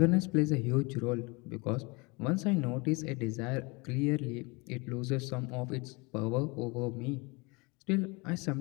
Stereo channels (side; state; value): right; quieter; 27.7 dB